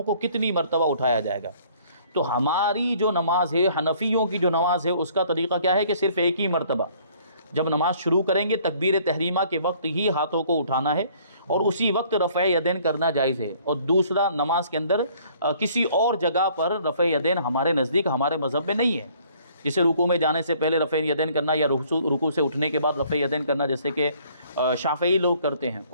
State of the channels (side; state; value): both; inverted; correlation -0.59